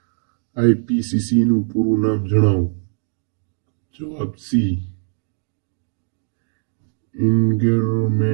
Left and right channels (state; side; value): silent; left; digital silence